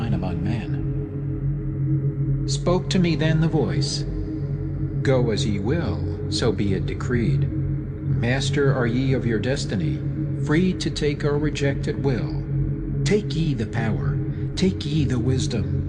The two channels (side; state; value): both; identical; correlation 1.00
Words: among men. Spoke to me then the voice, Go as ye will, so be it decreed. Master are ye of your destiny, free to take or reject at will. Take ye the power, take ye the